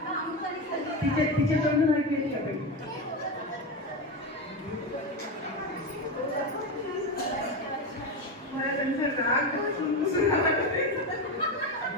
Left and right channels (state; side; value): normal; both; correlation 0.16